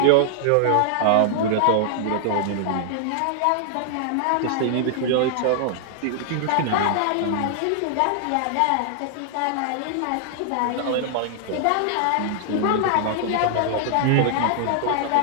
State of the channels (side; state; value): both; different; correlation -0.01